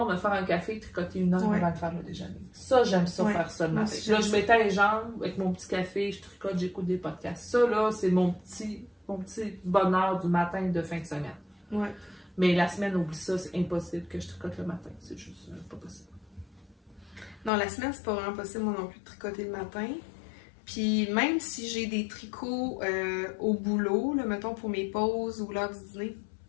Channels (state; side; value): drops out; right; at 17.5 s